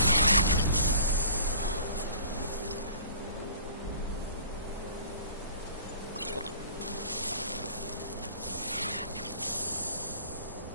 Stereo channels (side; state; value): both; inverted; correlation -0.47